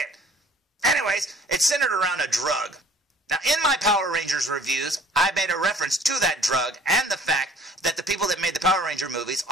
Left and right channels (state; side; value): normal; both; correlation 0.53